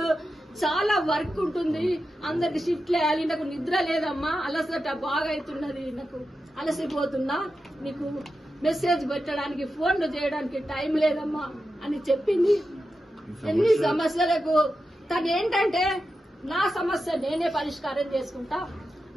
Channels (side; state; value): both; normal; correlation 0.90